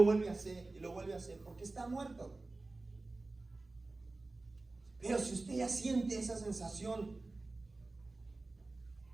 vuelve a hacer, y lo vuelve a hacer, porque está muerto. Pero si usted ya siente esa sensación,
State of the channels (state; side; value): quieter; left; 3.3 dB